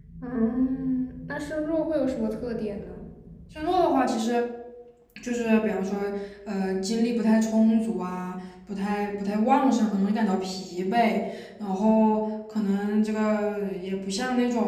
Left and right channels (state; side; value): identical; both; correlation 1.00